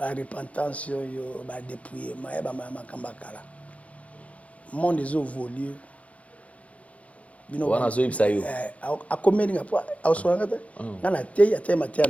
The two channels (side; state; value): right; late; 0.065 ms